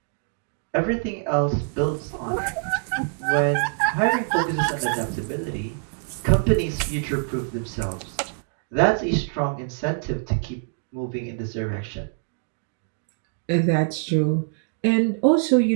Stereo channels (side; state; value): left; silent; 59 dB below the other